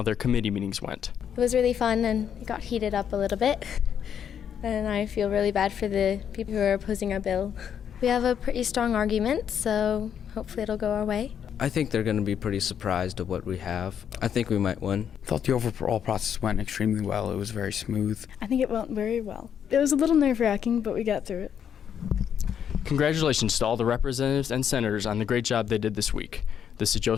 their committee meetings went. It was really fun and it got heated up a little bit. And I feel really bad for the people who are opposing our bill. We have a pretty strong argument, so hopefully it'll go our way. I think they're going to be pretty surprised at what we have. I think we might win. I thought the overall process went extremely well. It was very smooth. I think it went very well. It was a little nerve-wracking, but we got through it. Congratulations to all the representatives and senators on the great job they did this week. This is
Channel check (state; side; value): quieter; right; 8.5 dB